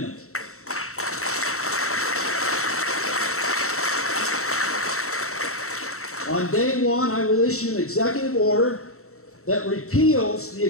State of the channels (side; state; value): right; late; 0.64 ms